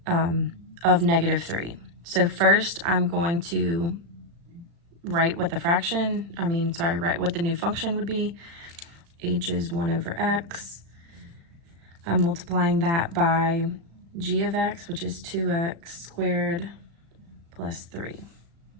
of negative 3. So first I'm going to write what the write what the new function would be. H is 1 over x. I'm multiplying that by g of x, which is 2x squared plus 3.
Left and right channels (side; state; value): left; late; 35 ms